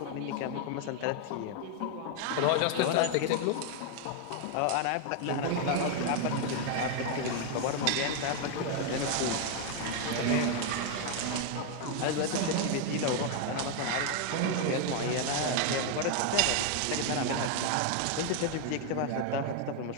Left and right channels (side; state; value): both; different; correlation 0.00